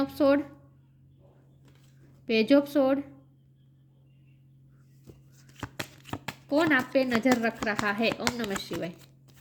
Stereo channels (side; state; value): both; identical; correlation 1.00